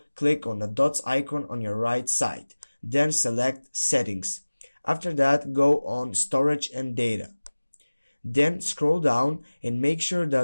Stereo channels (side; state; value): both; inverted; correlation -1.00